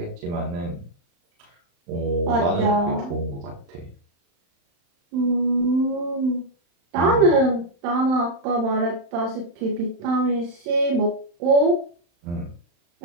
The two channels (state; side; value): late; left; 35 ms